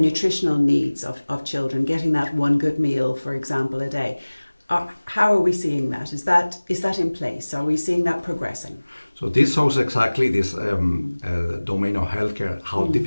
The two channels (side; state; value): both; inverted; correlation -1.00